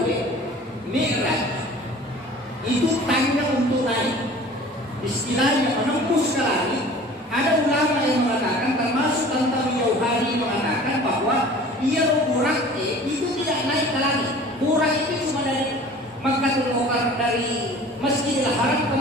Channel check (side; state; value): both; normal; correlation 0.45